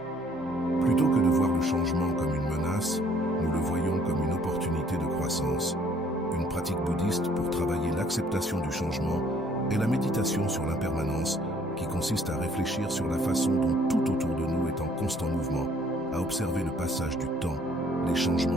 Plutôt que de voir le changement comme une menace, nous le voyons comme une opportunité de croissance. Une pratique bouddhiste pour travailler l'acceptation du changement est la méditation sur l'impermanence, qui consiste à réfléchir sur la façon dont tout autour de nous est en constant mouvement, à observer le passage du temps, les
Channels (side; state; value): left; noise; hum, 28 dB below the sound